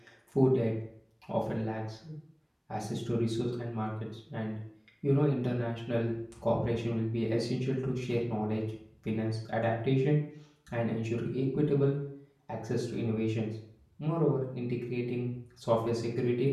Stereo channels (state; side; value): identical; both; correlation 1.00